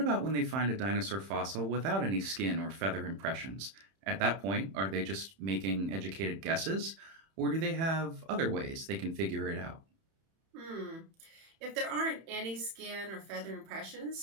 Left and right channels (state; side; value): late; left; 31 ms